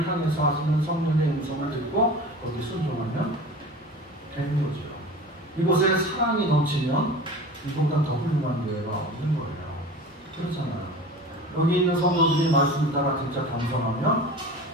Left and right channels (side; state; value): both; normal; correlation 0.36